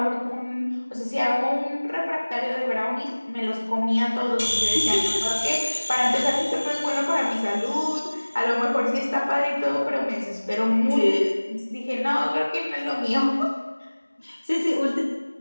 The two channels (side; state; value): both; inverted; correlation -1.00